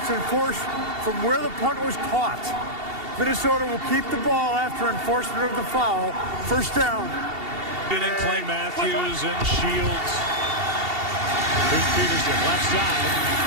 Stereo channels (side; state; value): left; late; 2.7 ms